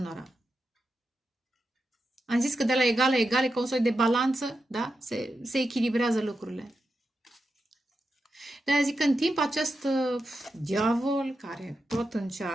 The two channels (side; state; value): both; normal; correlation 0.88